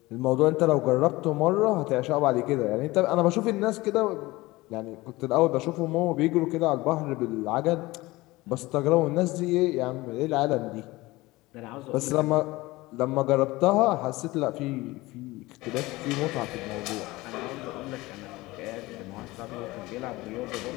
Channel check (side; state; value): right; quieter; 20.2 dB